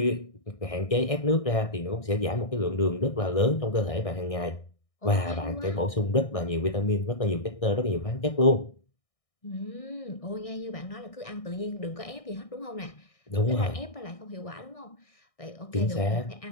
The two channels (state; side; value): late; right; 1.6 ms